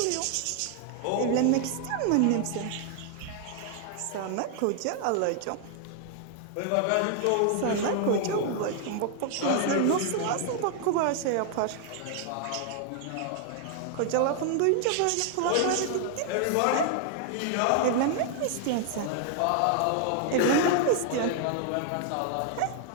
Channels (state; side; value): different; both; correlation 0.00